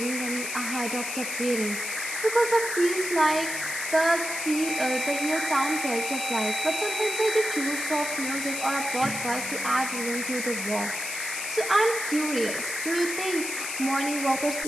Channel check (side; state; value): left; noise; hiss, 5 dB below the sound